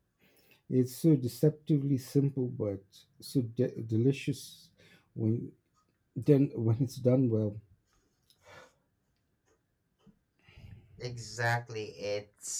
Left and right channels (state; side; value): identical; both; correlation 1.00